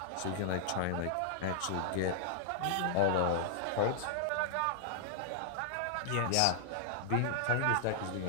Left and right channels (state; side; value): different; both; correlation -0.01